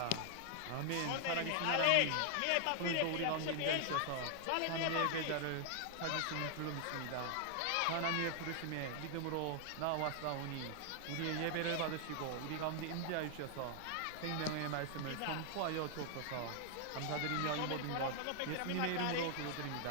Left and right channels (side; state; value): both; different; correlation 0.00